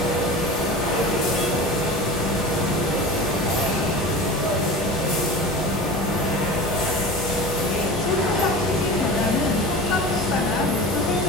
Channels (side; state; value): both; normal; correlation 0.33